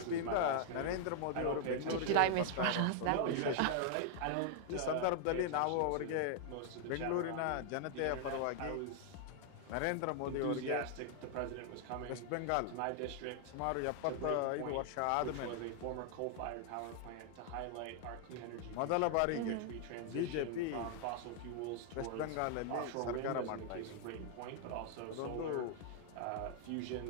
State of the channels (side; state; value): both; different; correlation 0.00